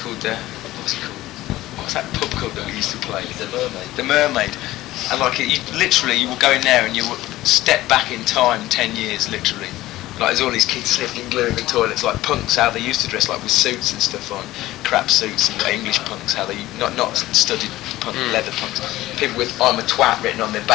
what's it called? What's that pub called that we used to play? The Mermaid. The Mermaid. And like you will go in there and you will step back in time 10 years, literally. Like there's all these kids slipping glue in the toilets, like punks how they used to dress, like with suits and stuff on, crap suits and English punks, how they not studied punk, leather punks, people with "I'm a twat" written on their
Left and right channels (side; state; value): right; quieter; 16.4 dB